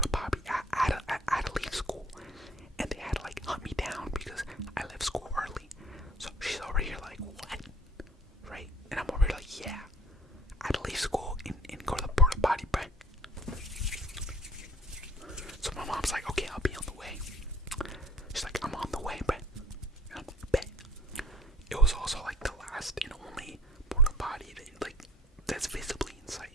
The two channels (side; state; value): both; normal; correlation 0.52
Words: potty. I had to leave school. And they had to like hunt me down because I left school early. So she's over here like, what? Right? And I'm over here like, yeah, I had to leave school and go to the porta potty, bro. So my mom's like, okay, I'll be on the way. She's like, I'm on the way, bro. And I'm like, bet. It was also like the last and only porta potty that's visibly in sight,